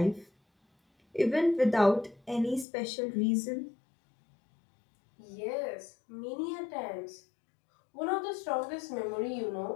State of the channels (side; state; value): right; drops out; at 2.7 s